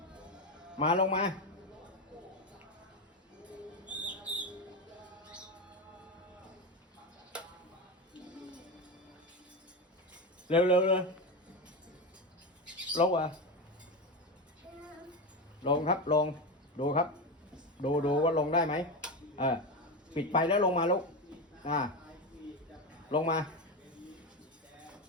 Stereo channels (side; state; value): both; normal; correlation 0.17